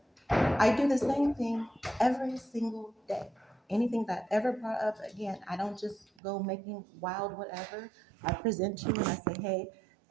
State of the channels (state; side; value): drops out; left; at 6.1 s